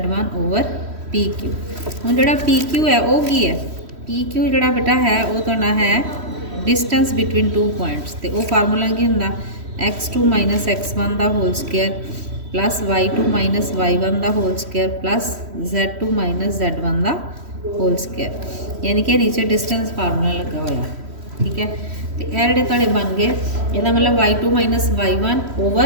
over PQ। हुण जोड़ा PQ है वो की है, PQ जोड़ा बेटा है वो तुहाडा है डिस्टेंस बिटवीन टू पॉइंट्स। तो वो फार्मूला की हुंदा x2 माइनस x1 का whole square plus y2 minus y1 का whole square plus z2 minus z1 का होल स्केयर, यानी कि नीचे डिस्टेंस फार्मूला लगा हुआ। ठीक है, तो यह जोड़े तुहाडे बन गए, इसका मतलब y2 minus y1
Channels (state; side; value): late; left; 3.1 ms